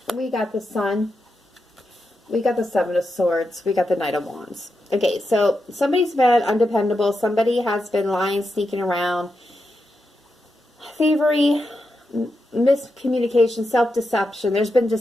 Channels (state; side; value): normal; both; correlation 0.87